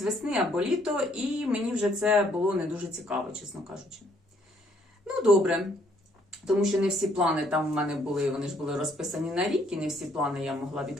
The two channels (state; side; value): normal; both; correlation 0.67